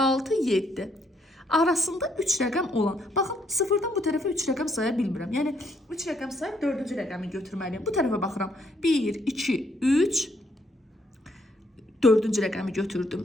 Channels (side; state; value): both; normal; correlation 0.71